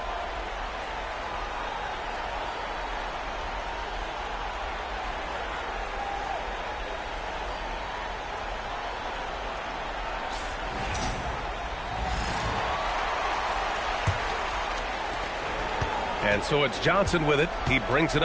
And so it's Johnson with it. He brings it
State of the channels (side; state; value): both; identical; correlation 1.00